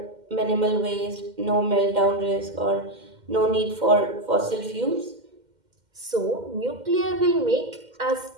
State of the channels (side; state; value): left; late; 2.1 ms